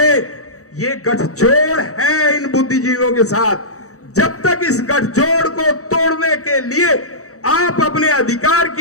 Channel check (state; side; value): late; right; 0.65 ms